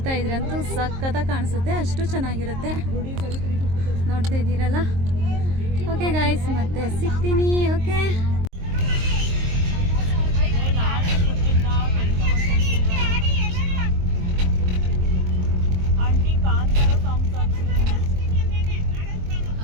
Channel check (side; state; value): left; late; 23 ms